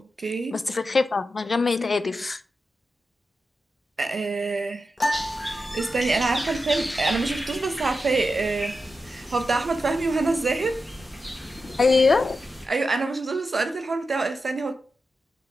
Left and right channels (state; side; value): normal; both; correlation 0.89